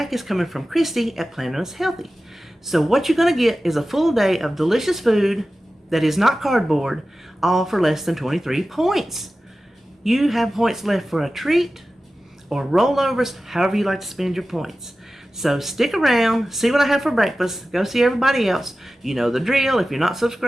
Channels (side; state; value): both; normal; correlation 0.95